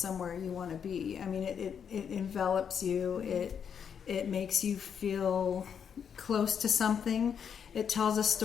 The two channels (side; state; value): right; quieter; 7.5 dB